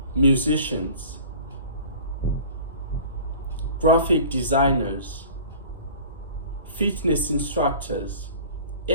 musicians, graphic designers, fitness instructors,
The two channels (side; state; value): both; inverted; correlation -0.43